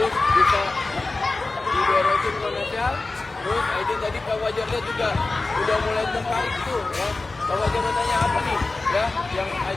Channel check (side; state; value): right; quieter; 3.4 dB